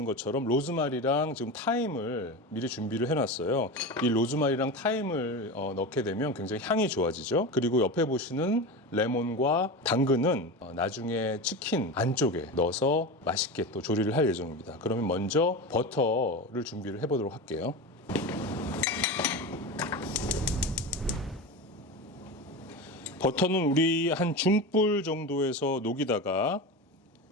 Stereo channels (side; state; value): both; normal; correlation 0.24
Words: 것처럼 로즈마리랑 지금 타임을 미리 준비를 해놨어요. 이 로즈마리랑 타임을 넣게 되면 굉장히 향이 좋아지죠. 그리고 옆에 보시는 레몬과 당근은 나중에 치킨 안쪽에 넣어서 맛있게 또 조리를 할 예정입니다. 그러면 먼저 버터를 준비를 해보도록 할게요. 버터는 우리 한 중불 정도에서 녹이다가